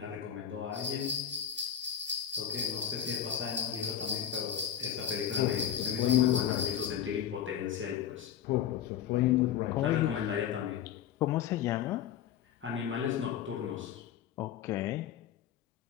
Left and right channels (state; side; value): quieter; right; 9.8 dB